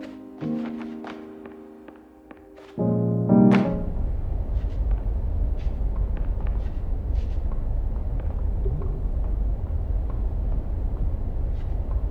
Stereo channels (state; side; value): identical; both; correlation 1.00